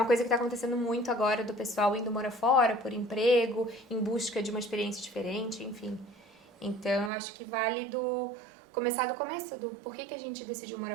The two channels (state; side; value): drops out; left; at 7.1 s